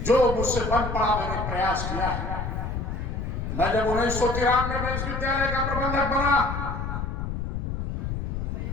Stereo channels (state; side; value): noise; left; rumble, 3 dB below the sound